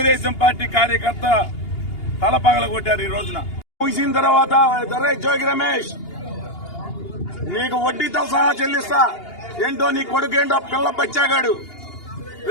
పార్టీ కార్యకర్త తలపగల కొట్టారు. ఈ రోజున ముగిసిన తర్వాత జోగి రమేష్ నీకు వడ్డీతో సహా చెల్లిస్తా, ఏంటో నీ కొడుకేంటో పిల్ల బచ్చాగాడు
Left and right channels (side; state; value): right; late; 2.8 ms